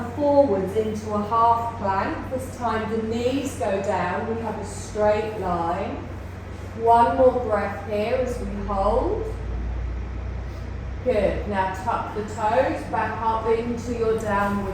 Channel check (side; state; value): both; identical; correlation 1.00